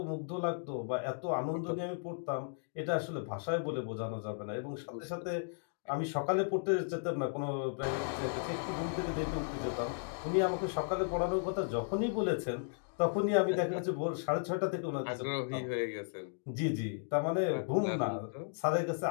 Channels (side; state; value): right; silent; digital silence